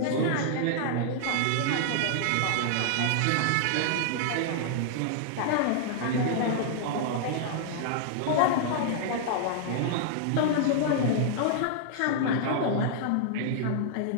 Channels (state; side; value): different; both; correlation -0.01